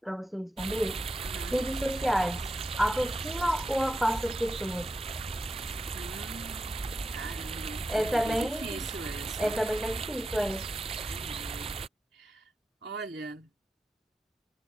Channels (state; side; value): normal; both; correlation 0.89